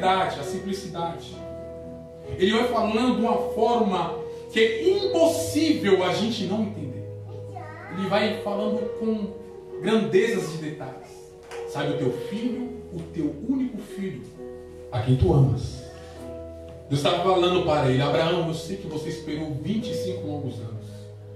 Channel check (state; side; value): identical; both; correlation 1.00